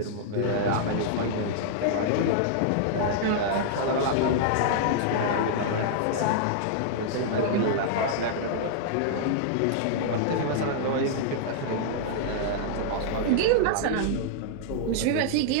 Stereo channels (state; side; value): different; both; correlation -0.01